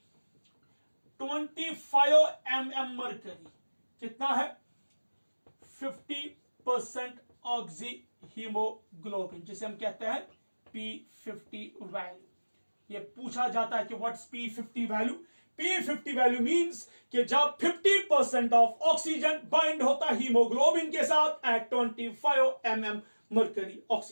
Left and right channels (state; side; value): inverted; both; correlation -1.00